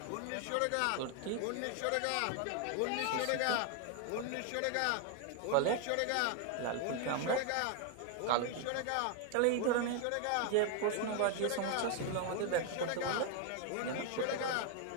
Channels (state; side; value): different; both; correlation 0.00